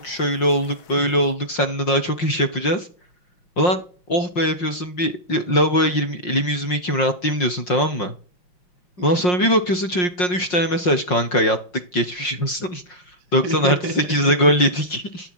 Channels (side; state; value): right; late; 5.6 ms